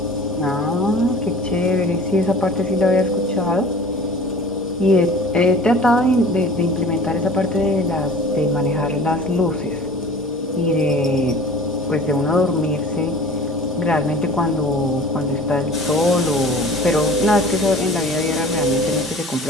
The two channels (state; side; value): normal; both; correlation 0.44